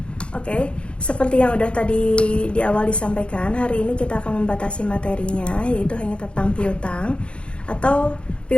Oke, seperti yang udah tadi di awal disampaikan, hari ini kita akan membatasi materinya, yaitu hanya tentang piutang. Atau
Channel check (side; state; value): right; late; 0.057 ms